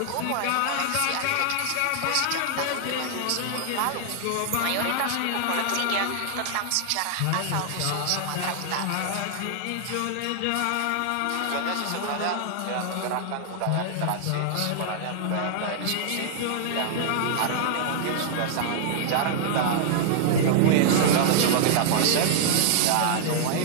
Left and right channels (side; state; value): both; different; correlation -0.01